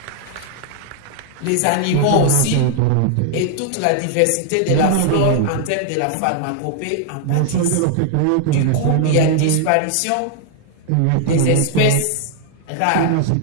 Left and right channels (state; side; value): different; both; correlation 0.00